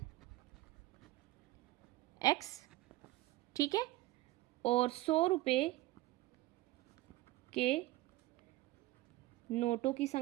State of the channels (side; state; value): left; quieter; 17.9 dB